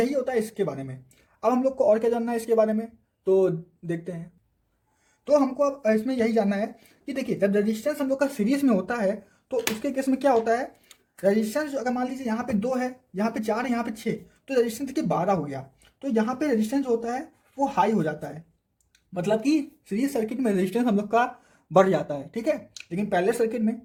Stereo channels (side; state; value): both; identical; correlation 1.00